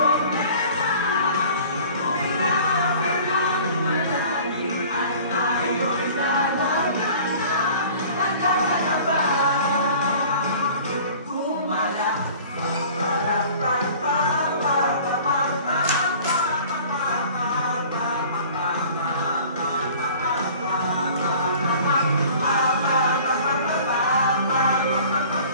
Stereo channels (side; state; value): both; inverted; correlation -0.47